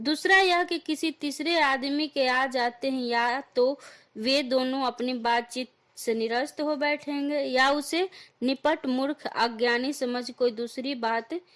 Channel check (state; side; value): identical; both; correlation 1.00